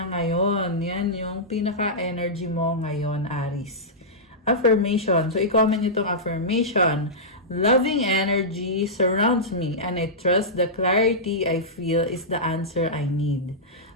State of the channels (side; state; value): both; normal; correlation -0.13